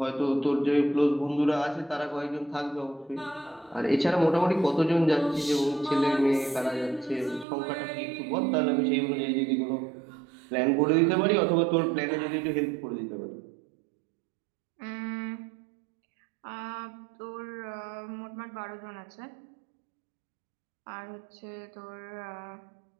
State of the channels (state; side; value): drops out; left; at 7.5 s